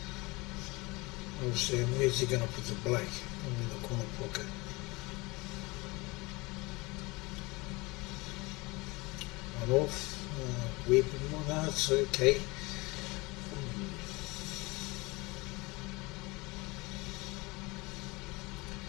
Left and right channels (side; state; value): right; quieter; 24.4 dB